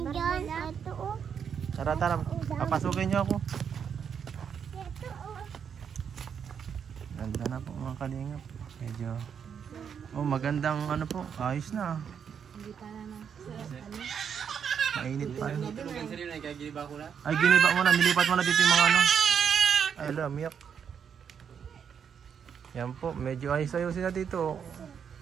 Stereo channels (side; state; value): left; quieter; 7.5 dB